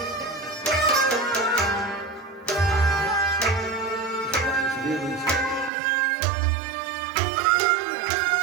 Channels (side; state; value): left; drops out; at 5.7 s